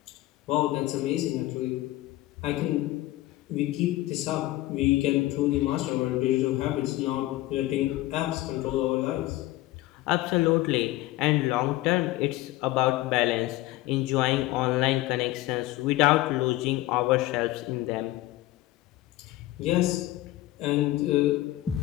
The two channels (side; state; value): right; quieter; 16.9 dB